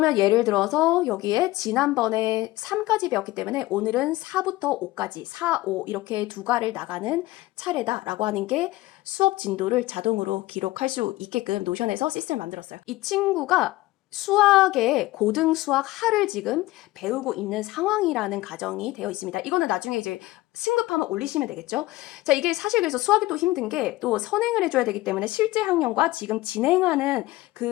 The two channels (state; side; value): quieter; right; 18.4 dB